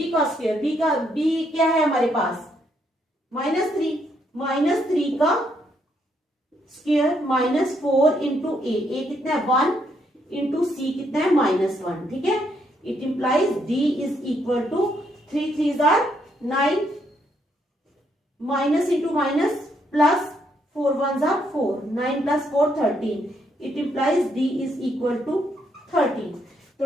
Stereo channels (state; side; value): normal; both; correlation 0.74